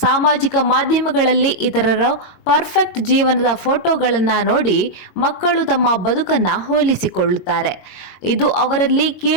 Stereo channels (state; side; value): late; right; 22 ms